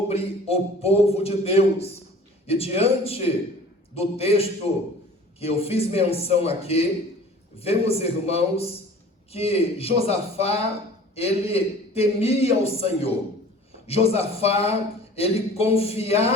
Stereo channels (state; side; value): normal; both; correlation 0.46